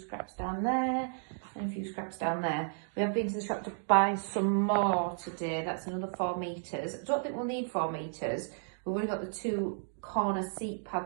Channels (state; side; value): silent; left; digital silence